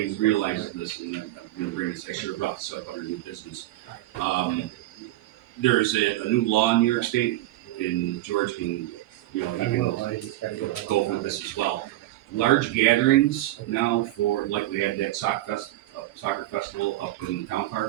realizes this, and I'm going to bring this, I should have brought this up under new business. There's a new law in New York State, and George can, you can go over this as well. Large gatherings now for, like we had that soccer festival up in the town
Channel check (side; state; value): left; quieter; 16.0 dB